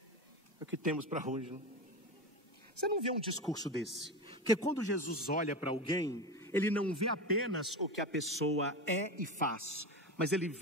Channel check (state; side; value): normal; both; correlation 0.22